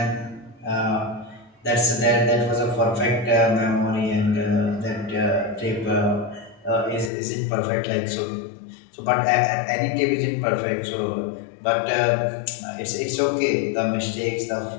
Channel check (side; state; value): right; drops out; at 7.1 s